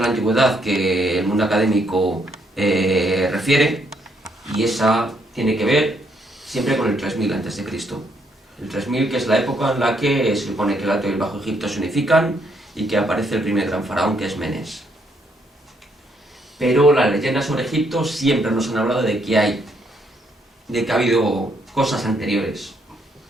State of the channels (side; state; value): both; normal; correlation 0.72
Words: la antigüedad que el mundo académico refiere, y esa tiene que ver siempre con el 3000 a.C. El 3000, que es la época en la que se supone que el Alto y el Bajo Egipto se unifican y que aparece el primer gran faraón, que es Menes. Pero las leyendas sobre Egipto siempre nos han hablado de que ha habido cosas anteriores.